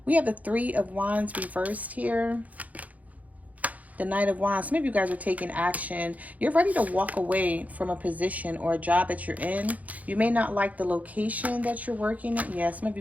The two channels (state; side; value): late; left; 0.074 ms